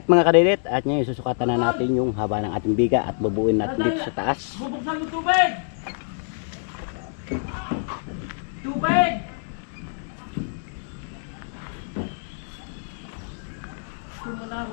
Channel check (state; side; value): silent; right; digital silence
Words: mga kadidit, at ngayon susukatan na natin yung haba ng ating biga at bubuin natin dito sa taas. Bubuksan mo tubig! Tubig!